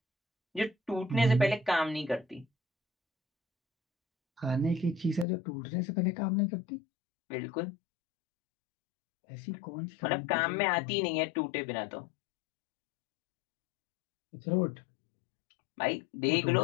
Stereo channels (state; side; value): drops out; right; at 5.2 s